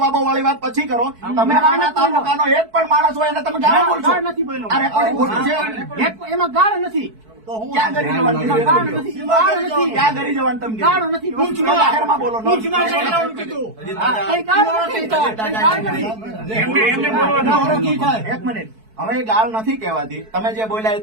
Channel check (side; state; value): left; late; 4.6 ms